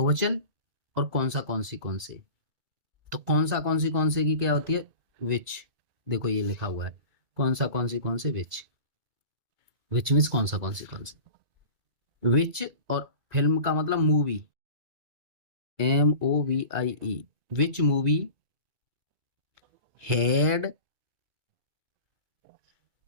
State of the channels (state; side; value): late; left; 2.3 ms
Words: और कौन से। तो कौन से की क्या होती है, विच। देखो ये लिखा हुआ है, कौन से विच। विच मीन्स कौन से। विच और फिल्म का मतलब movie, MOVIE। Which movie had